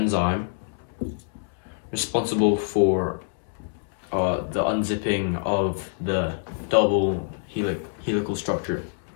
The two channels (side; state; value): right; silent; 61 dB below the other